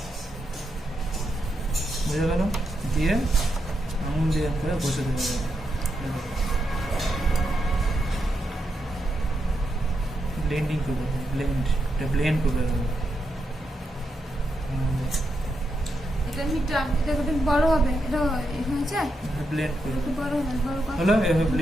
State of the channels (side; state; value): both; normal; correlation 0.83